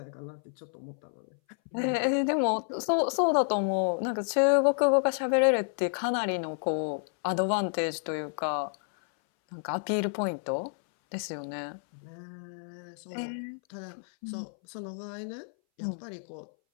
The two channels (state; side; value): silent; right; 58 dB below the other